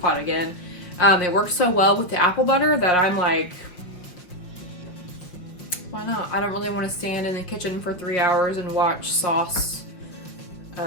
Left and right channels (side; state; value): right; late; 5.9 ms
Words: pot again. It works so well with the apple butter that I'm like, why not? I don't really want to stand in the kitchen for 3 hours and watch sauce